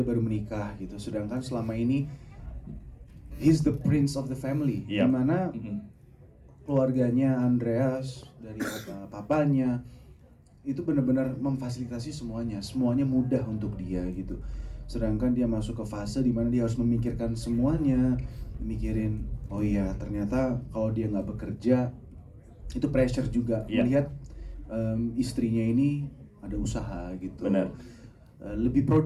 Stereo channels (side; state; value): both; identical; correlation 1.00